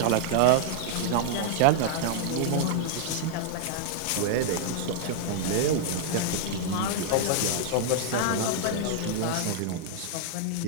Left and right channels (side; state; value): both; different; correlation -0.01